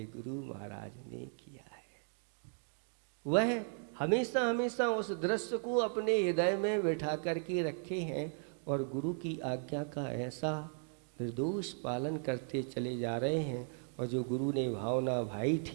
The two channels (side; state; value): left; silent; 53 dB below the other